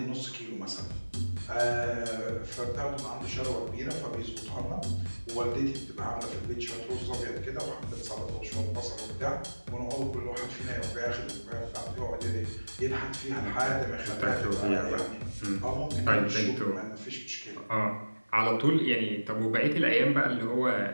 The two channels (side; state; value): both; inverted; correlation -1.00